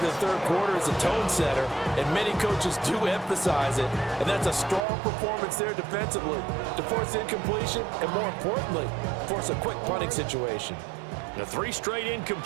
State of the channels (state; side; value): drops out; left; at 4.9 s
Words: the third quarter as a tone setter, and many coaches do emphasize it, and that's a strong performance there defensively to force incompletion and, more importantly, force a quick punting situation. The 3 straight